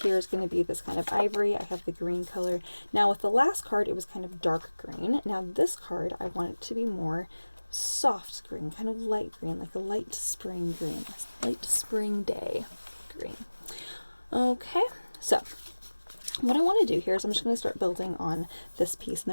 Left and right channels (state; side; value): inverted; both; correlation -1.00